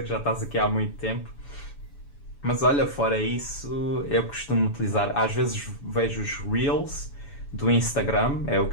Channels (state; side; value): late; right; 7.0 ms